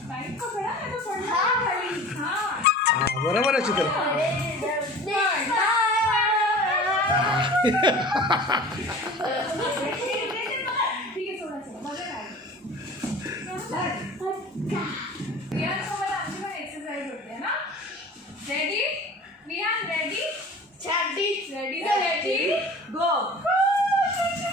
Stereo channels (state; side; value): normal; both; correlation 0.41